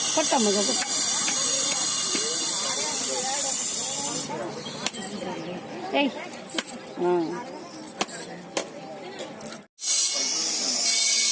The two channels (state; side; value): identical; both; correlation 1.00